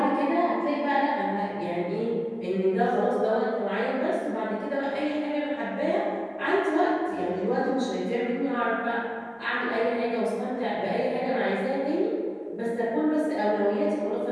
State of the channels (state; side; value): identical; both; correlation 1.00